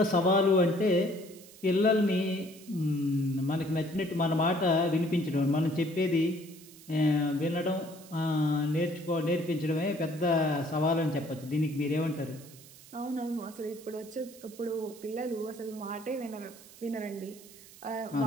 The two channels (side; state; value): right; noise; hiss, 20 dB below the sound